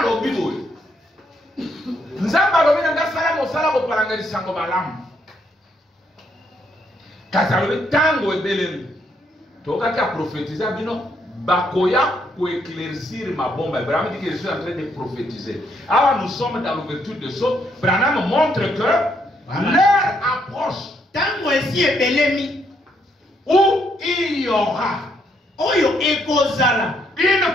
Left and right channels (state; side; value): normal; both; correlation 0.73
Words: boye. Nzamba alobi nga sala mosala bo palanga sango malamu. Kasi alobi tango ebelemi. Tokaki a prophétiser bino bakoya pour éclaircir ma bombe. Branham dit que je suis en train de prophétiser. Alors nous sommes dans l'ouverture de choses. Branham montre que l'heure approche. Tango esi ebelemi où il y aura oyo ekozala une